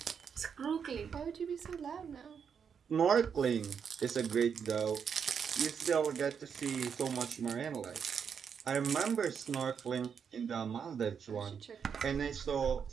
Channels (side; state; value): left; quieter; 7.0 dB